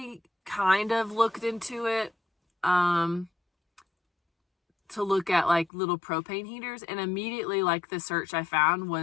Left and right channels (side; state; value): right; drops out; at 5.7 s